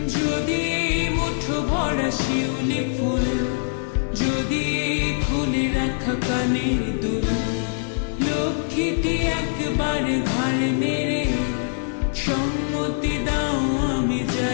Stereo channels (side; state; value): right; silent; digital silence